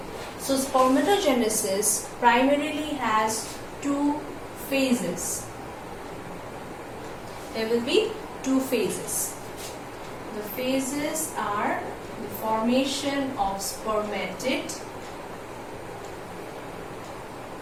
So spermatogenesis primarily has two phases. There will be two phases. The phases are the formation of spermatid,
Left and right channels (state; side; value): identical; both; correlation 1.00